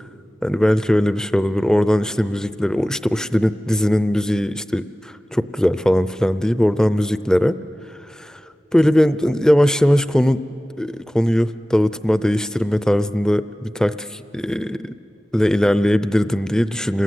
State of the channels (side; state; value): both; normal; correlation 0.97